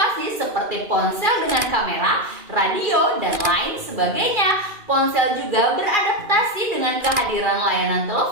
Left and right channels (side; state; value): left; late; 2.4 ms